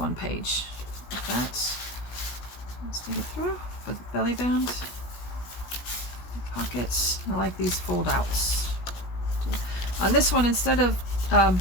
page. Like that. Let's take it through with belly band. Pockets. I like these fold outs. On this one, instead of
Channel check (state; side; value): late; right; 16 ms